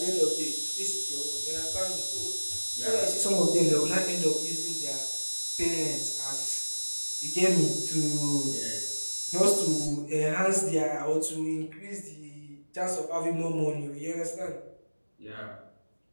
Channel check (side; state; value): both; inverted; correlation -1.00